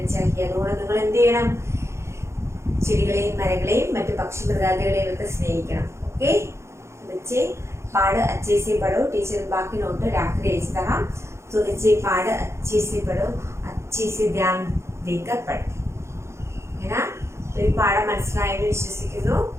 चाहिए. അതുകൊണ്ട് നിങ്ങൾ എന്ത് ചെയ്യണം, ചെടികളെയും മരങ്ങളെയും മറ്റു പക്ഷി മൃഗാദികളെയും ഒക്കെ സ്നേഹിക്കണം. ओके बच्चे, पाठ अच्छे से पढ़ो. टीचर बाकी नोट राखकर भेज रहा. तो बच्चे पाठ अच्छे से पढ़ो, अच्छे से ध्यान देकर पढ़े, है ना. तो ये पाठ മനസ്സിലായെന്ന് വിശ്വസിക്കുന്നു.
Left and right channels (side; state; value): left; late; 0.13 ms